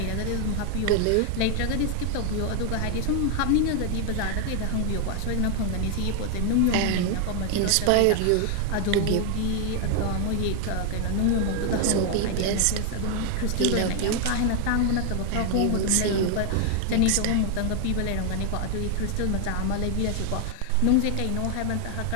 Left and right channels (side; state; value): both; different; correlation 0.00